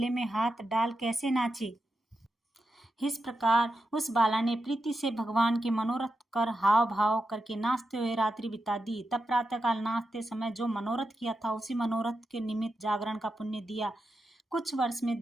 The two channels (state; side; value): normal; both; correlation 0.88